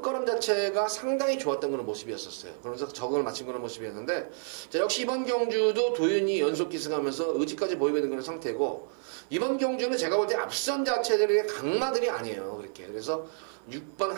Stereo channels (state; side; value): silent; left; 58 dB below the other